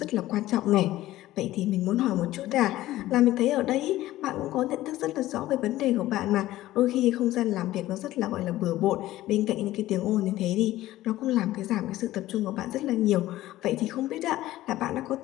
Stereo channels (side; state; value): right; quieter; 15.5 dB